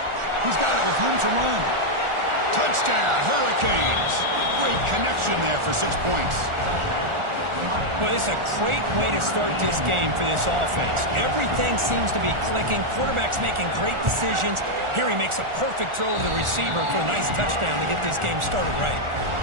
He's got it with room to run. Touchdown, Hurricanes. Great connection there for 6 points. Well, it's a great way to start this game for this offense. Everything seems to be clicking. Quarterback's making great decisions. Here he makes a perfect throw to the receiver for a nice touchdown to get this game started right.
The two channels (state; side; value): late; left; 1.4 ms